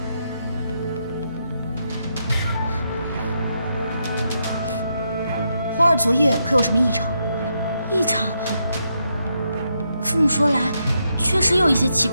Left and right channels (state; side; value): inverted; both; correlation -0.81